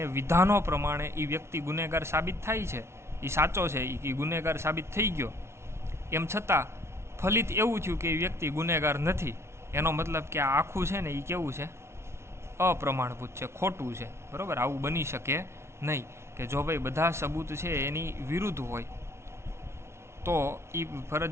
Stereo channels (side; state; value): left; late; 0.13 ms